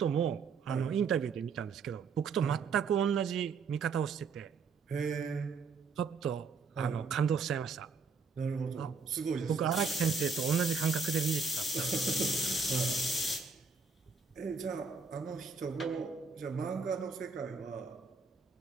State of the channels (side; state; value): left; quieter; 5.0 dB